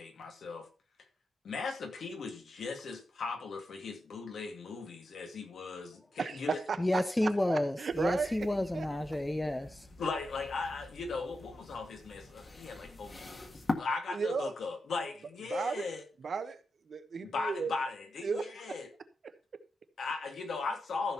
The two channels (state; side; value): normal; both; correlation 0.87